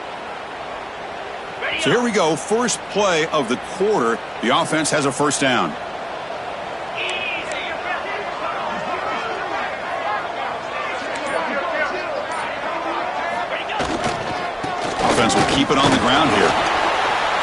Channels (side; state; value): both; identical; correlation 1.00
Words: So here we go. First play of the quarter. The offense has a 1st down. Offense will keep it on the ground here.